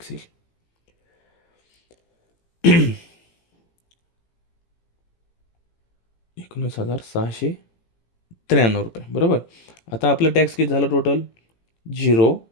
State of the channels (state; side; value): late; right; 18 ms